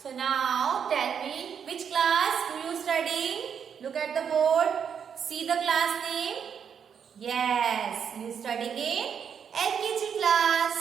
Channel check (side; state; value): left; quieter; 7.5 dB